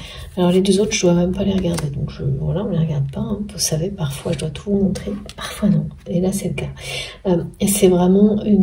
Alors les deux autres, je dois même pas les regarder. Donc voilà, on ne les regarde pas. Hein. Vous savez, parfois, je dois tout vous montrer. Parfois, non. Et là, c'est le cas. Et c'est vraiment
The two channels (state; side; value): identical; both; correlation 1.00